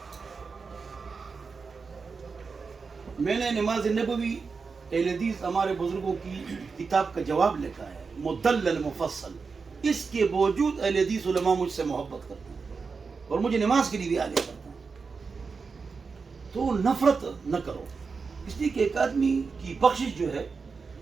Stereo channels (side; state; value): left; quieter; 4.9 dB